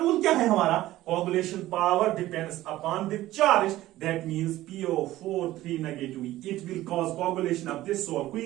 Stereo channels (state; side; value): quieter; left; 15.7 dB